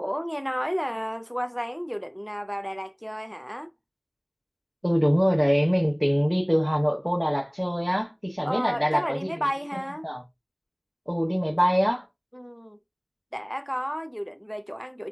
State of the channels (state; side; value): identical; both; correlation 1.00